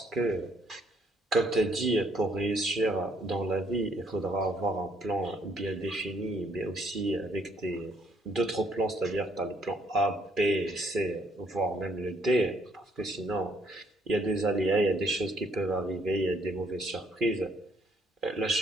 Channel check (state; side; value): normal; both; correlation 0.67